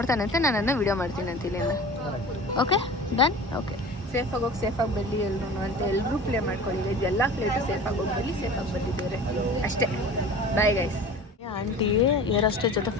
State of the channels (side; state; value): both; normal; correlation 0.39